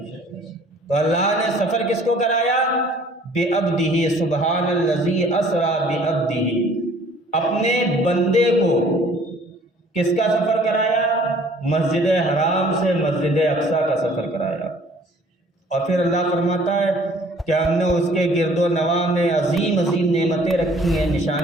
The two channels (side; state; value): both; normal; correlation 0.55